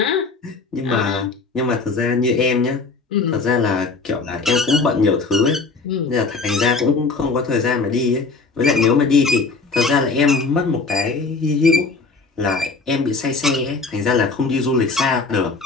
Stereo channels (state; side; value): quieter; right; 4.1 dB